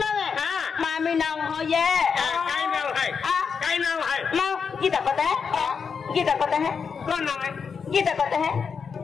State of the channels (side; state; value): right; quieter; 6.0 dB